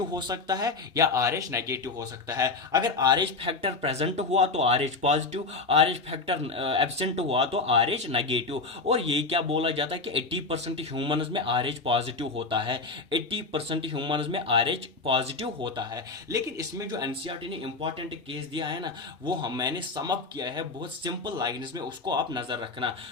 हो सकता है या आर एच नेगेटिव हो सकता है। अगर आर एच फैक्टर प्रेजेंट हुआ तो R H positive, R H factor absent हुआ तो आर एच नेगेटिव। और ये क्या बोला जाता है कि 80% ह्यूमन्स में आर एच पॉजिटिव होता है, 80% ह्यूमन्स में आर एच पॉजिटिव होता है। लेकिन इसमें जो एनसीईआरटी ने इंपॉर्टेंट केस दिया है ना, वो मैंने सम अप किया है बहुत सिंपल लाइंस में, उसको आप नजर रखना।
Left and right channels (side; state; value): right; quieter; 3.8 dB